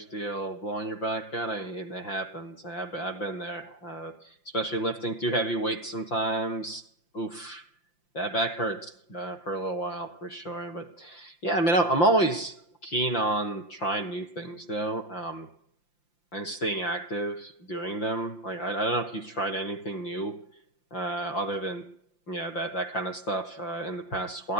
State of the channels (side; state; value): right; late; 5.8 ms